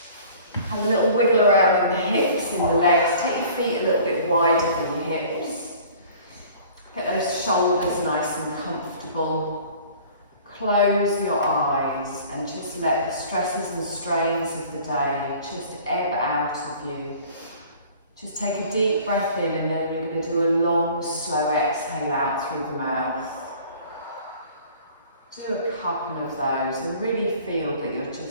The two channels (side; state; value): both; inverted; correlation -0.48